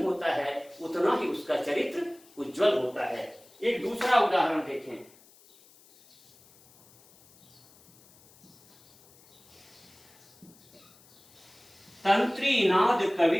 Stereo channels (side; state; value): left; noise; hiss, 27 dB below the sound